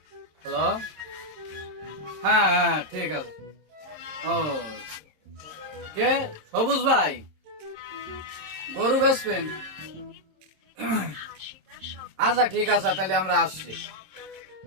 হ্যালো, হ্যাঁ হ্যাঁ ঠিক আছে। ও কে? সবুজ ভাই, গরু বেচবেন? আচ্ছা ঠিক আছে, তাহলে আমরা আসছি।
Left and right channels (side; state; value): left; late; 26 ms